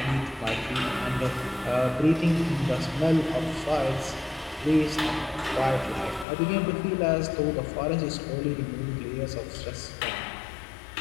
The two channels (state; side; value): drops out; right; at 6.2 s